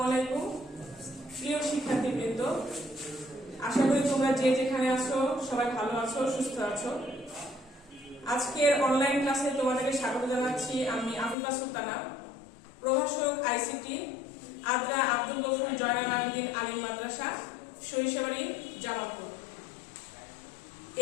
আলাইকুম প্রিয় শিক্ষার্থীবৃন্দ, আশা করি তোমরা যে যেখানে আছো সবাই ভালো আছো, সুস্থ আছো। আজকের অনলাইন ক্লাসে তোমাদেরকে স্বাগত জানাচ্ছি। আমি আবুল্লাহ সুলতানা, প্রভাষক আইসিটি, আদ্রা আব্দুল গফুর জয়নাল আবেদীন আলিম মাদ্রাসা, সরিষাবাড়ি, জামালপুর।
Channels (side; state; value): right; drops out; at 11.4 s